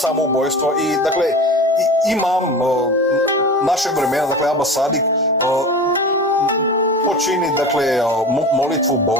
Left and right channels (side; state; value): both; normal; correlation 0.33